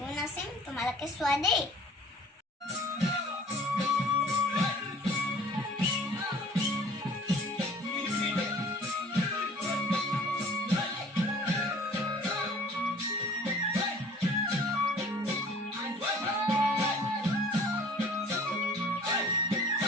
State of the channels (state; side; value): normal; both; correlation 0.49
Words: নাচিম, তোমালোকে চোৱা দেই।